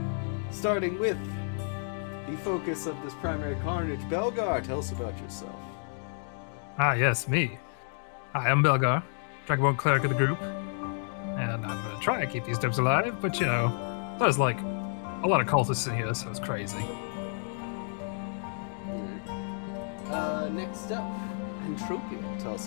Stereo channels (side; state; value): right; silent; 57 dB below the other